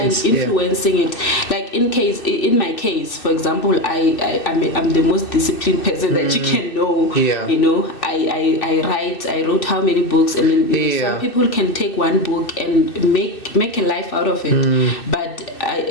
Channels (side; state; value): right; late; 2.6 ms